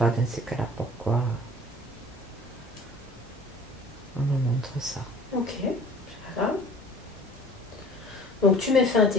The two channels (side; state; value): both; normal; correlation 0.47